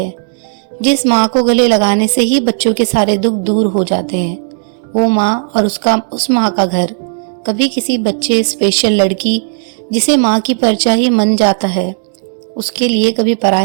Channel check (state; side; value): silent; left; digital silence